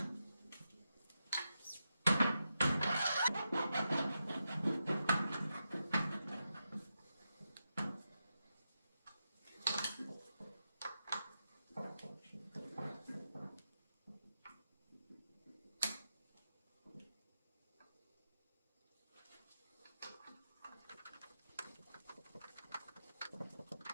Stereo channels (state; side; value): inverted; both; correlation -0.88